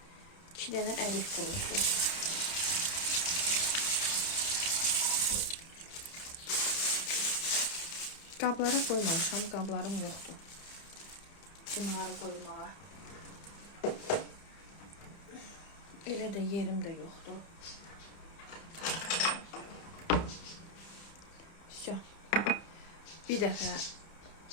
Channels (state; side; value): late; right; 30 ms